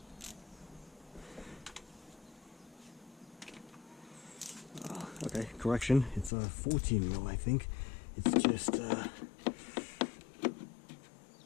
Okay, correction, it's a 14 mil, I think. It's just, I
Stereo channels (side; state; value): right; drops out; at 6.3 s